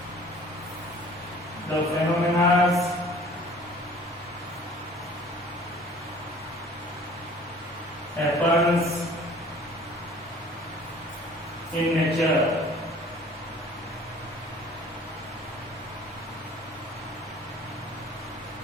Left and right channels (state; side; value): normal; both; correlation 0.49